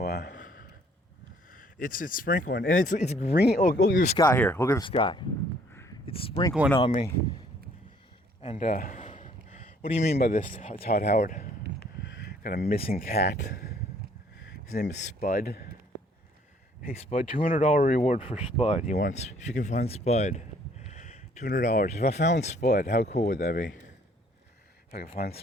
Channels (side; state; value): both; normal; correlation 0.61